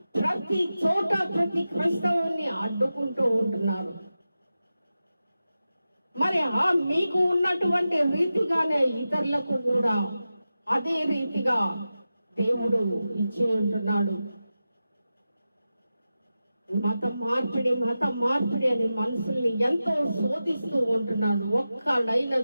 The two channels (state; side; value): inverted; both; correlation -0.93